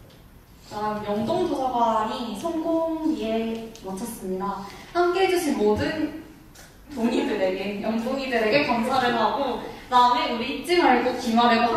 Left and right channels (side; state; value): both; identical; correlation 1.00